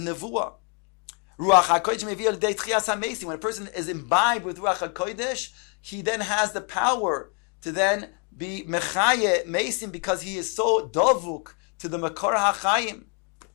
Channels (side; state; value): right; quieter; 39.0 dB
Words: Ruach HaKodesh mevia l'dei tchias hamesim. When a person is imbibed with Ruach HaKodesh, he then has the power to then be mechaye mesim, because he is so dovuk to the makor hachayim.